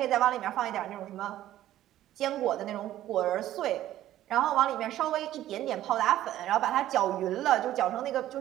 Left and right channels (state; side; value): quieter; left; 13.4 dB